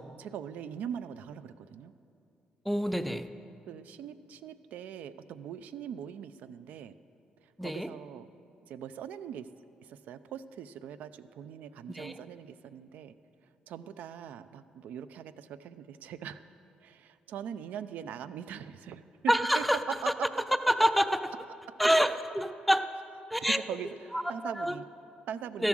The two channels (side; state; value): both; normal; correlation 0.93